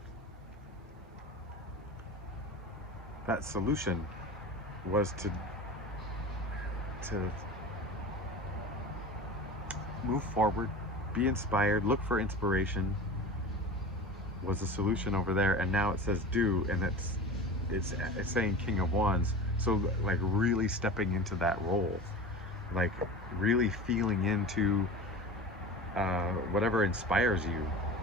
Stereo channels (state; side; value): normal; both; correlation 0.33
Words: That solution was to move forward, be inspired, look for inspiration, was the solution over there. And now it says do, and it's saying King of Wands. So like really stepping into that role, like really feeling into whatever inspires you.